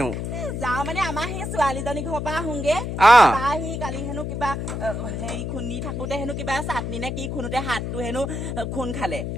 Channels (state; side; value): noise; left; hum, 4 dB below the sound